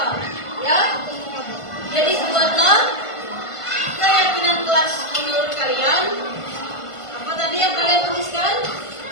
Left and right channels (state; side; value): late; right; 1.5 ms